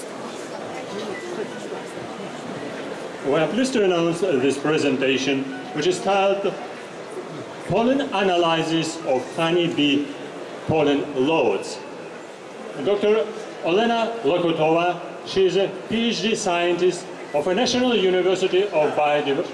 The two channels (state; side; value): identical; both; correlation 1.00